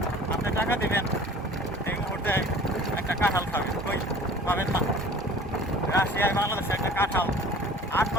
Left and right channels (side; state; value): both; normal; correlation 0.46